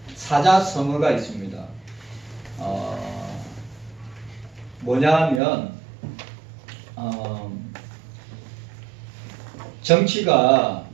사자성어가 있습니다. 뭐냐면 정치가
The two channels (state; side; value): drops out; left; at 5.4 s